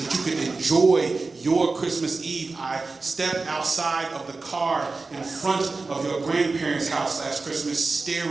you could enjoy your Christmas Eve. I stepped outside of the car in front of your grandparents' house last Christmas,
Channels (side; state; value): left; quieter; 3.8 dB